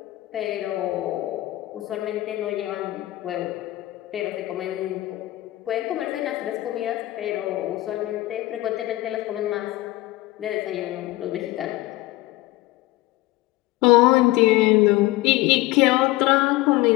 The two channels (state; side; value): quieter; right; 18.2 dB